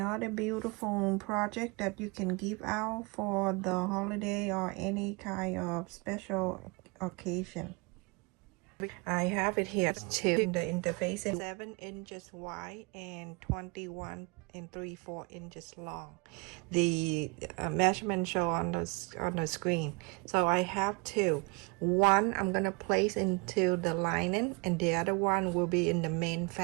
beautiful project that you can give out for the holiday or any kind of special occasion. I have it here too. The interface is 7 inches wide and 21 and 3/4 inches long. The measurement show on the screen. So I have two. One I'm gonna place into the lining, and the other one will be in the main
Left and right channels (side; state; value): left; quieter; 29.7 dB